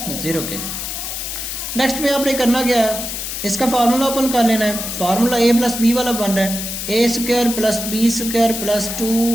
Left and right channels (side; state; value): left; noise; hiss, 5 dB below the sound